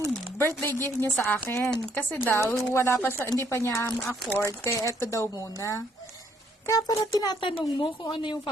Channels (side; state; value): both; normal; correlation 0.68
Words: birthday gift niya sa akin. Kasi daw, wala pa siya, hindi pa niya ma-afford. Kaya eto daw muna. Kaya para tinatanong mo kung ano yung